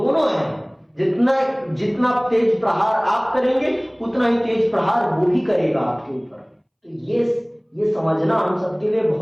है। जितना तेज प्रहार आप करेंगे उतना ही तेज प्रहार वो भी करेगा आपके ऊपर। तो ये समझना हम सबके लिए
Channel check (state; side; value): identical; both; correlation 1.00